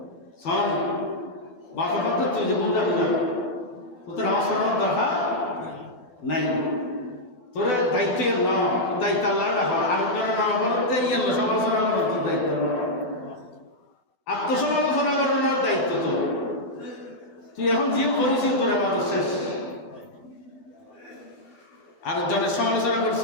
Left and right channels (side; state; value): right; late; 12 ms